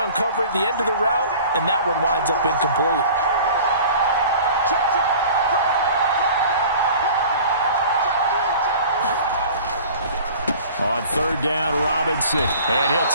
at the end of the route, and that one winds up incomplete. On 3rd down, Robinson. And he'll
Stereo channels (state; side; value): inverted; both; correlation -0.44